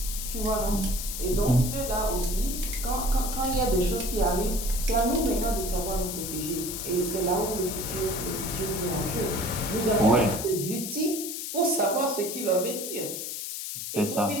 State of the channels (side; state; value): left; noise; hiss, 5 dB below the sound